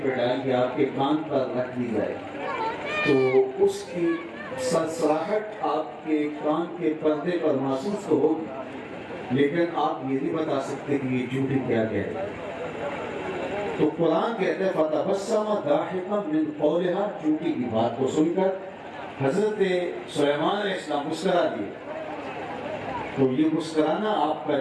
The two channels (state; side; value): identical; both; correlation 1.00